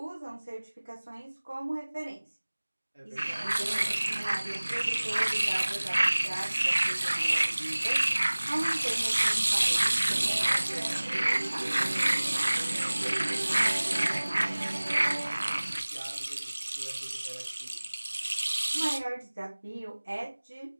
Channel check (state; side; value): inverted; both; correlation -1.00